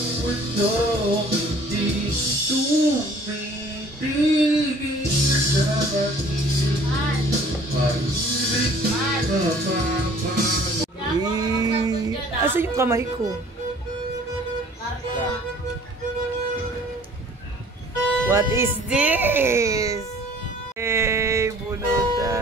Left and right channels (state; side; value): normal; both; correlation 0.53